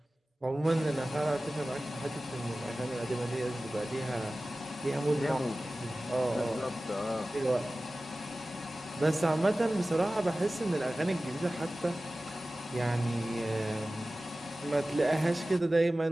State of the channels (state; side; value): normal; both; correlation 0.96